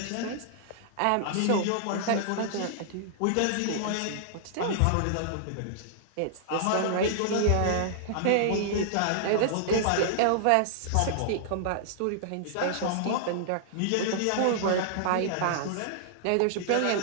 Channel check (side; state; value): both; different; correlation -0.01